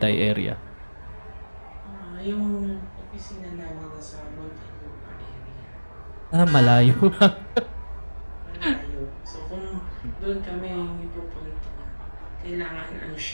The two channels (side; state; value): both; inverted; correlation -1.00